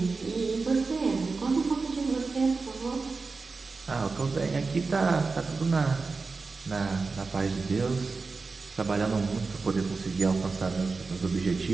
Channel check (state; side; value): quieter; left; 4.2 dB